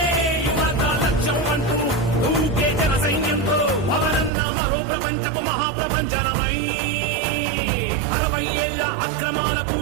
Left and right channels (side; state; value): left; drops out; at 4.3 s